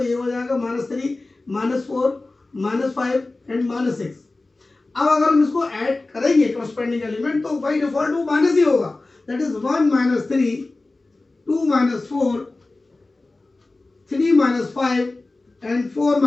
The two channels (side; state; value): right; quieter; 3.2 dB